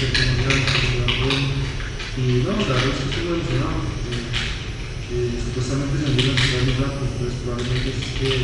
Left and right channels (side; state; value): both; identical; correlation 1.00